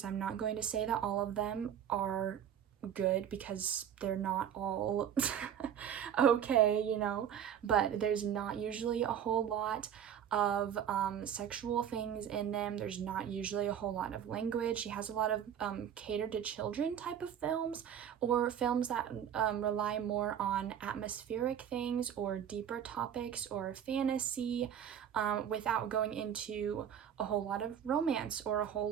I'm not going to say that all of them are good, because they're not all okay, you know, but there's not usually a whole lot of sexual things in them. There's not usually a whole lot of language. He has a lot of catered to children type of films, or films that rely more on atmospheric things or deeper topics or fantasy, without going into a whole lot of romance or a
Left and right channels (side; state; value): left; quieter; 9.2 dB